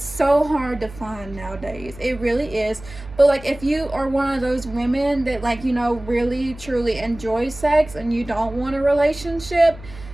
so hard to find nowadays. It really is. But like, if you are one of those women that like, really truly enjoy sex and you don't want a relationship,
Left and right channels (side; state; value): right; noise; hum, 17 dB below the sound